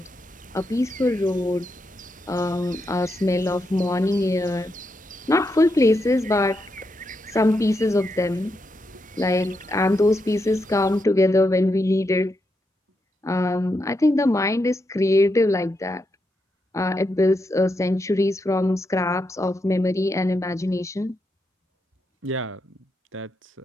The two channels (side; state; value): both; normal; correlation 0.83